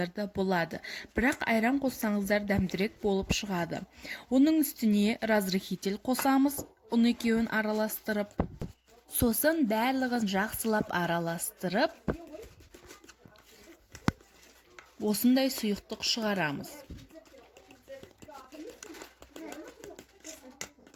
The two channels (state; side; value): identical; both; correlation 1.00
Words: да болады, бірақ айран қоссаңыздар дәмдірек болып шығады. Оның үстіне разрыхитель қосамыз, оны екеуін араластырып, сосын барлығын жақсылап араластырып, осындай сұйықтық шығарамыз.